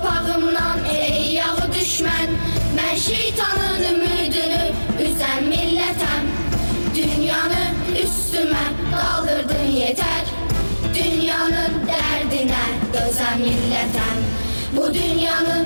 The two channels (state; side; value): inverted; both; correlation -1.00